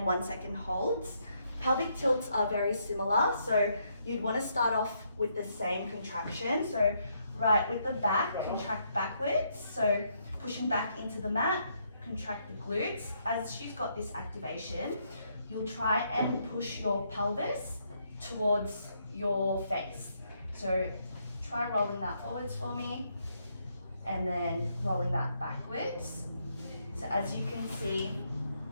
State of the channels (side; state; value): both; inverted; correlation -0.75